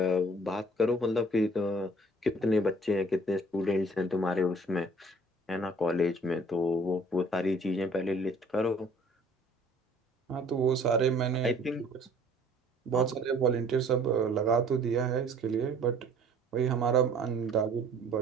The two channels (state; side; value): normal; both; correlation 0.54